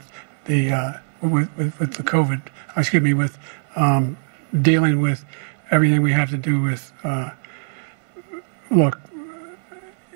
the with the COVID, excuse me, with dealing with everything we have to do with, look,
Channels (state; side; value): silent; left; 65 dB below the other